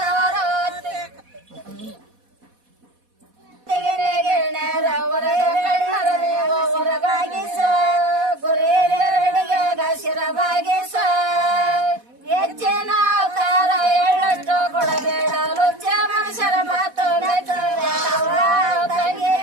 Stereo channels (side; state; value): left; late; 4.1 ms